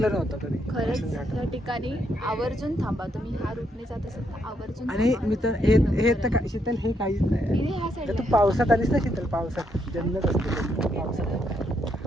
नव्हतं कधी खरंच माळशेज या घाटात. ठिकाणी आवर्जून थांबा. तुम्ही ह्या रूटने जात असाल तर आवर्जून आणि थांबा. मित्र हे तर काय शीतल, हे काहीच नाही. इथे ह्या जर साईडला तू पावसात आलीस ना शीतल, पावसात जन्नत असते.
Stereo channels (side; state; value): both; normal; correlation 0.76